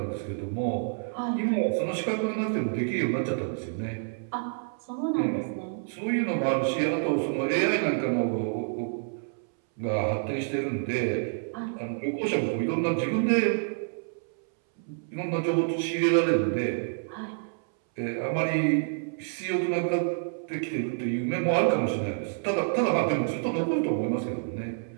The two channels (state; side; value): silent; left; 59 dB below the other